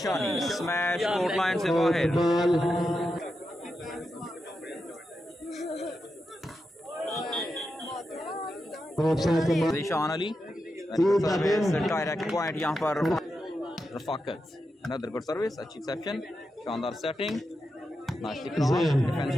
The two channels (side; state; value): both; normal; correlation 0.88